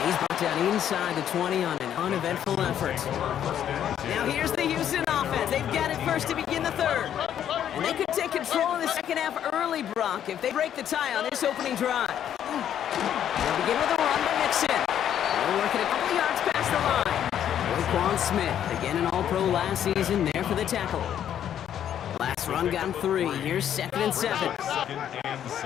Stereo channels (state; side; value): quieter; right; 10.0 dB